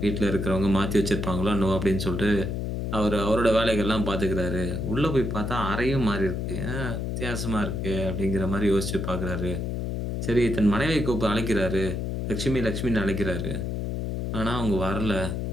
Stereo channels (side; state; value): left; noise; hum, 2 dB below the sound